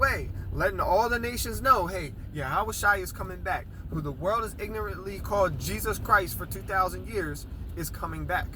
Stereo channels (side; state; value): both; identical; correlation 1.00